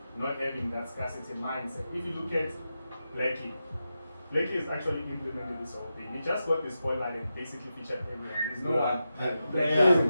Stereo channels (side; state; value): both; inverted; correlation -0.89